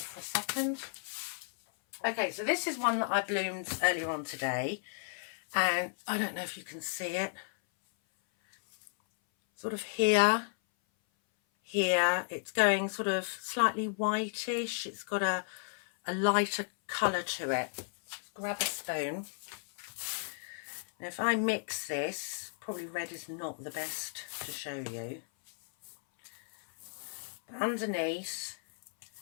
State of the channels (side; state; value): right; silent; 55 dB below the other